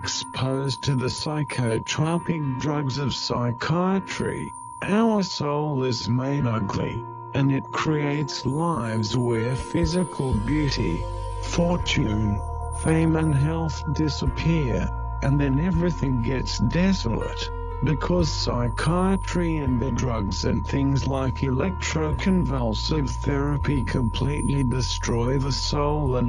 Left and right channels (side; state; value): both; identical; correlation 1.00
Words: to the psychotropic drugs of psychiatry, our soul is made ugly, and it creates lives where physical beauty, fortune, fame and health disappear, and then everything gets desolate, because psychiatry and the drugs and things like electroconvulsive therapy completely destroy the soul